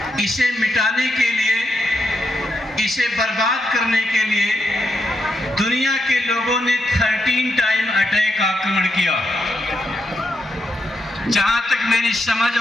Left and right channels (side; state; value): both; normal; correlation 0.83